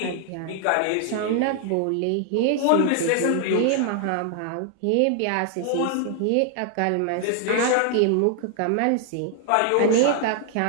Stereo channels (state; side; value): different; both; correlation 0.00